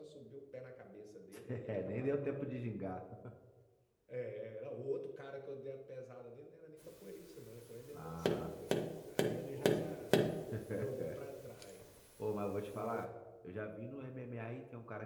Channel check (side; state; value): both; identical; correlation 1.00